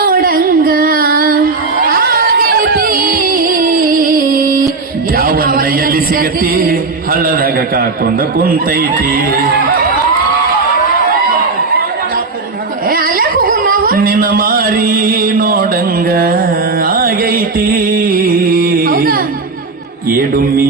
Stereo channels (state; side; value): quieter; left; 4.0 dB